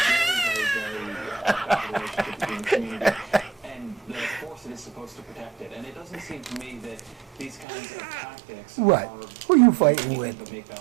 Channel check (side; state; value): left; drops out; at 7.7 s